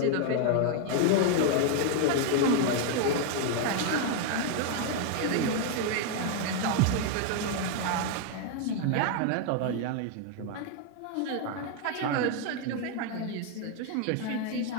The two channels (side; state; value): both; different; correlation 0.00